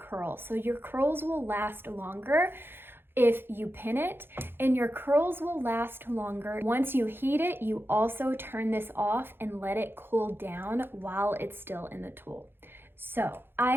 So your curls will last longer if you pin it, and your curls will last longer. Once you heat it, you also turn this off and let it cool down while it's still in the tool. So I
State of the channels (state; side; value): late; left; 0.10 ms